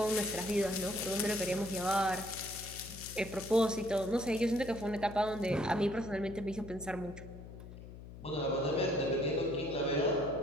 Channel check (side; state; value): left; noise; hum, 14 dB below the sound